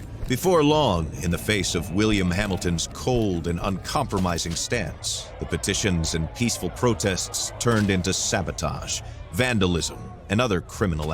Before long, in the face of William Hamilton's cold and uncompromising stance, the petitions and peaceful protests turned into sabotage, vandalism, and other criminal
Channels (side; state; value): both; identical; correlation 1.00